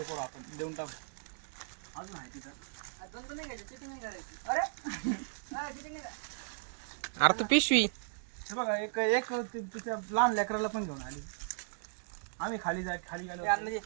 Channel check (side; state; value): left; silent; digital silence